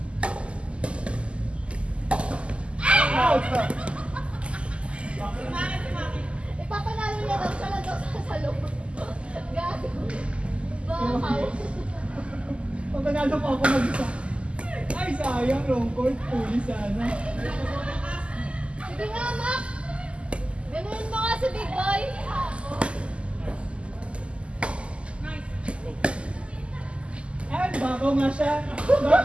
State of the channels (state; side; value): late; left; 0.055 ms